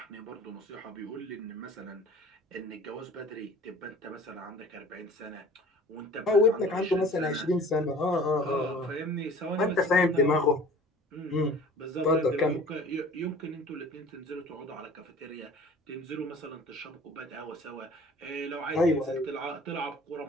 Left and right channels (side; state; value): both; normal; correlation 0.46